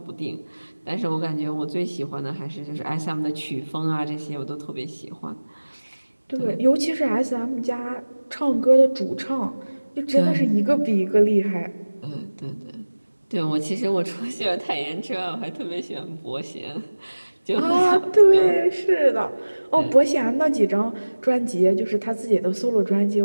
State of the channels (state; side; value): inverted; both; correlation -1.00